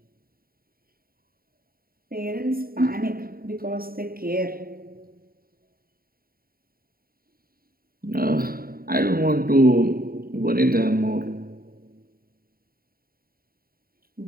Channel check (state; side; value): late; left; 0.43 ms